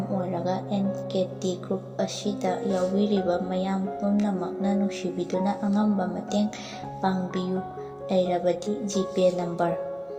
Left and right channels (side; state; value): both; identical; correlation 1.00